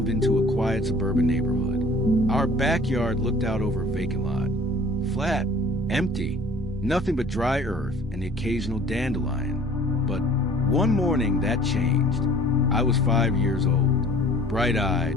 into a quiet suburban neighborhood. Our backyard looked out over a vacant lot. Flat, empty, nothing but dry earth and the occasional dandelion. But one morning that changed. I was 5 years old,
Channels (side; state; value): both; normal; correlation 0.50